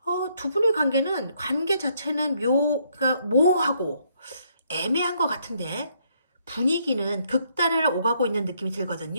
두 분의 관계 자체는 그러니까 모호하고 애매한 것 같은데 분위기는 극단을 오가고 있는 느낌이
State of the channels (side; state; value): both; inverted; correlation -0.71